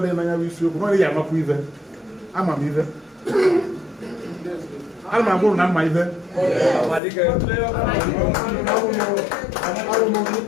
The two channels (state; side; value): drops out; right; at 7.0 s